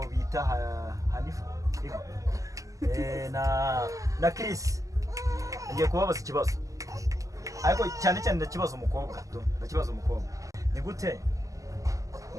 bita Hanifa na Chris ngiye kubabaza ikibazo ariko cyane ndakibaza umukobwa ni gute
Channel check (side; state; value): left; late; 0.16 ms